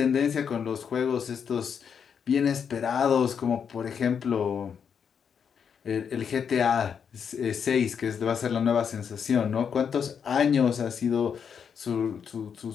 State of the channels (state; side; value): quieter; right; 7.2 dB